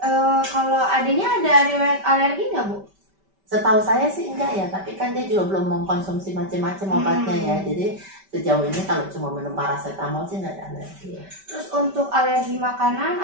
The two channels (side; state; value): left; late; 5.1 ms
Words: Kalau adanya ada riwayat alergi nggak Bu? Setahu saya sih enggak ya, tapi kan dia juga belum mengkonsumsi macam-macam obatnya ya. Jadi sejauh ini kalau cuma minum paracetamol sih enggak ada alergi ya. Terus untuk alergi makanan